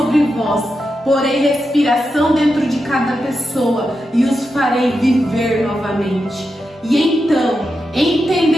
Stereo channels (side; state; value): both; normal; correlation 0.88